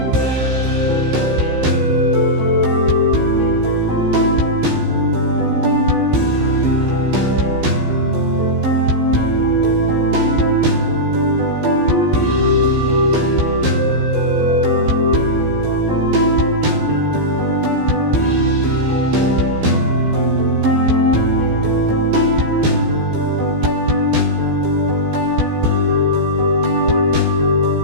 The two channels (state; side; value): late; left; 15 ms